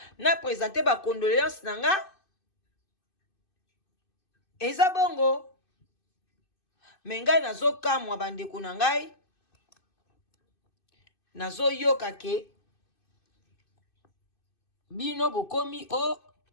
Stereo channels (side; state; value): right; late; 2.6 ms